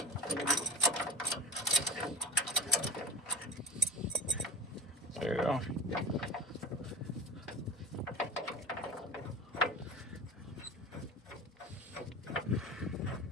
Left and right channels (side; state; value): both; normal; correlation 0.32